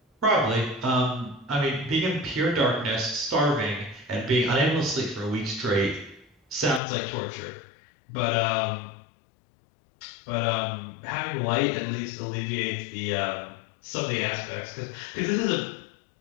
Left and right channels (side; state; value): right; drops out; at 6.8 s